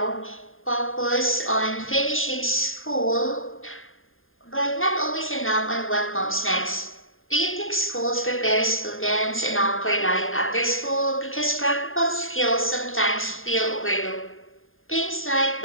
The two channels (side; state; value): right; late; 0.59 ms